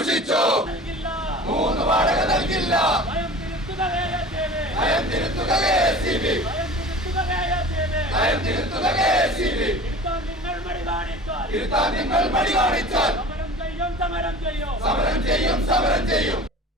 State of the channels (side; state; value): both; normal; correlation 0.39